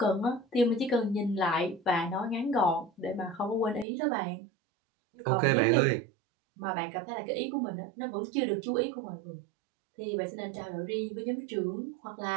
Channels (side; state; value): left; drops out; at 3.9 s